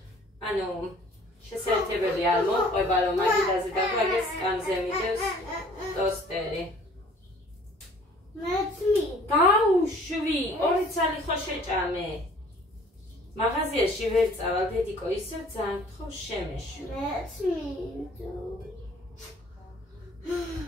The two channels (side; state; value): both; normal; correlation 0.53